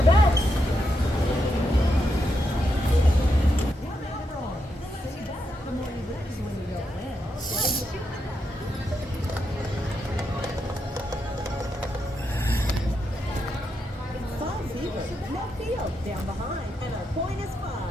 bets. No field down behind, and our point is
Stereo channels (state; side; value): normal; both; correlation 0.83